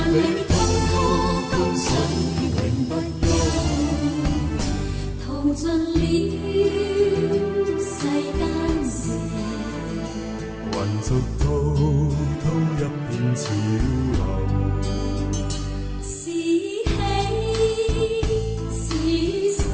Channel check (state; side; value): identical; both; correlation 1.00